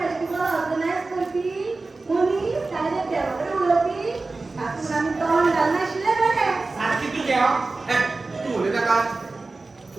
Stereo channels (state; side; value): quieter; left; 3.5 dB